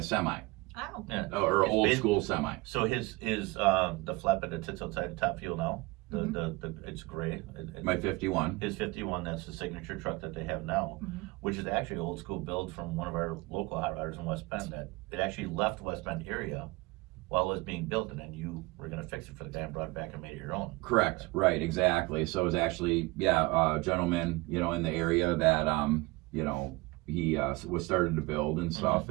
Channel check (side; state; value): left; quieter; 23.8 dB